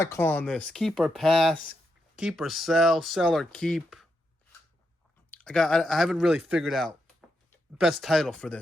calling this? Keep or pass? Keep or sell? Sell or keep? I haven't really figured out best title for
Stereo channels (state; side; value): normal; both; correlation 0.83